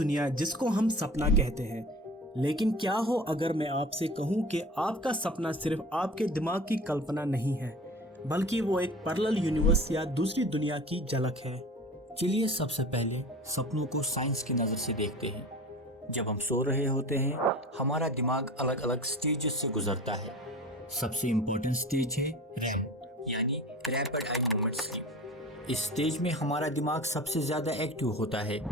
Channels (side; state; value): both; normal; correlation 0.37